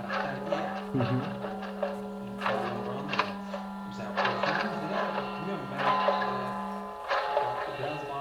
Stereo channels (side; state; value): both; identical; correlation 1.00